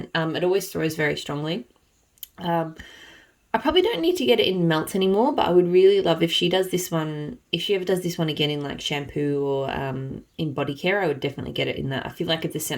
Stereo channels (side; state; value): both; identical; correlation 1.00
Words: It always throws very strongly. I probably don't need to get it in melts anymore, but I would really love if she does this one, if she ever does this one again in like shampoo or in body care, I would definitely get it in that. I feel like it's a